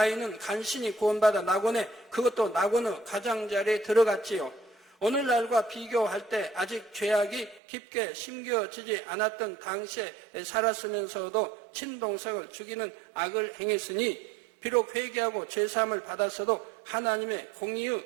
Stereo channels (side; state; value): left; drops out; at 7.6 s